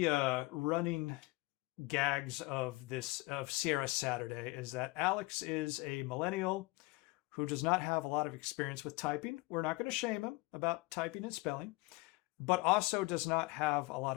running gags of Sierra Saturday is that Alex is a millennial who does not have a lot of experience with typing. We're not going to shame him about typing and spelling, but also does not have a lot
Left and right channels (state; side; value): quieter; right; 22.8 dB